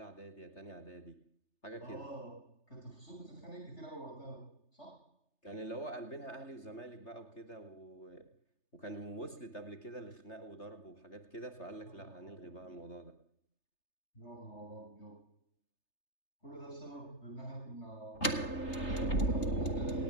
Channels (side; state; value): right; late; 3.3 ms